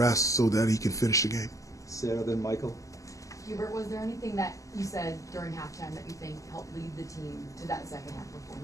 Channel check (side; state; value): right; late; 0.16 ms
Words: so that he can finish the game. Sarah, then Michael. Hubert, was there anything that you said during halftime that you think helped lead the team to that second half